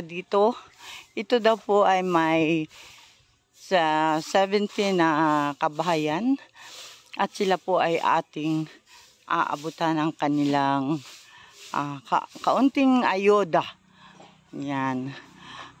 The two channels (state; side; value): identical; both; correlation 1.00